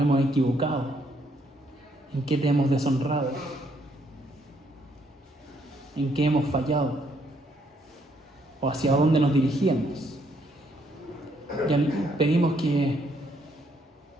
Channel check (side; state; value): both; normal; correlation 0.71